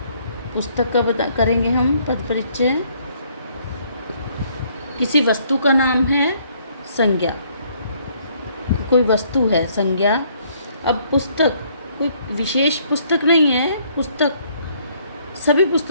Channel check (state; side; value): inverted; both; correlation -0.65